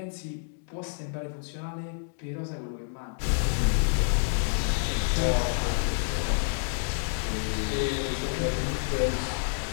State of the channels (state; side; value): silent; right; digital silence